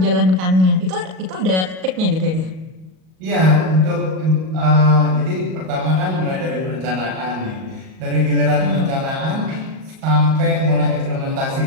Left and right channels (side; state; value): left; late; 38 ms